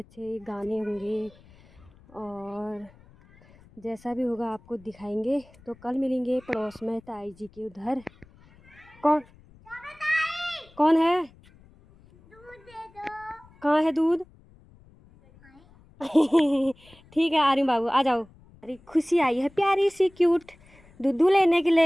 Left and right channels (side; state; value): left; noise; rumble, 27 dB below the sound